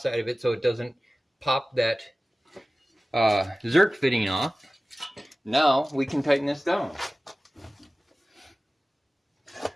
of it so it doesn't pop that Zerk fitting off. Now we can tighten this down.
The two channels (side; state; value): both; normal; correlation 0.96